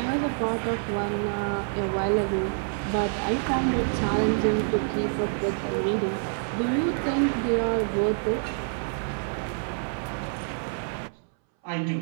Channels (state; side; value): silent; left; 60 dB below the other